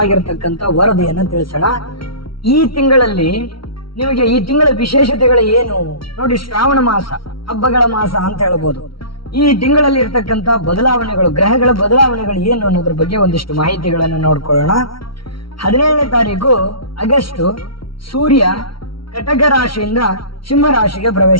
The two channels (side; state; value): right; late; 0.74 ms